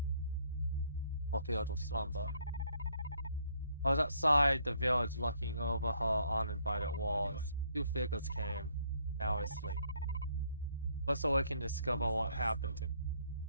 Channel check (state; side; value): inverted; both; correlation -0.67